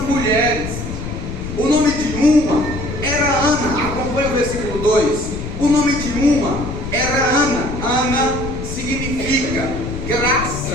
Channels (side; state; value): left; noise; rumble, 7 dB below the sound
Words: mulheres. O nome de uma era Ana. Acompanhe o versículo 2. O nome de uma era Ana. Ana significa